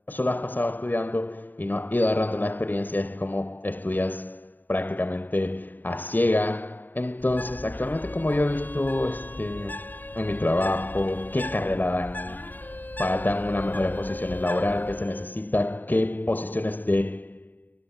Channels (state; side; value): late; right; 0.089 ms